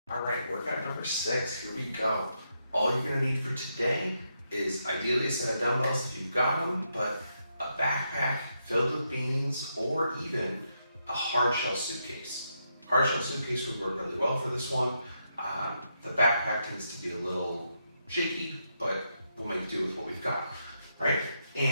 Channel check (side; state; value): both; inverted; correlation -0.81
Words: All right, workout number 6, here we go. All you're gonna need for today is ideally a set of dumbbells if you've got them, but a backpack filled with beans or even a hard shell suitcase. Hard shell suitcase would work really well for this one. The backpack tends to be a little shaky, but we'll make do with what we've got, right?